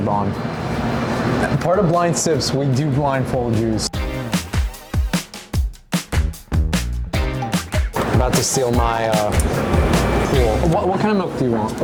on. Part of blind sips, we do blindfold use. about to steal my pool. What kind of milk do you want?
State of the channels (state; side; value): identical; both; correlation 1.00